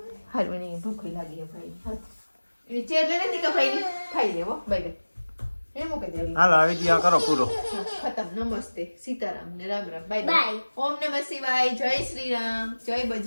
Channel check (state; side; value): inverted; both; correlation -1.00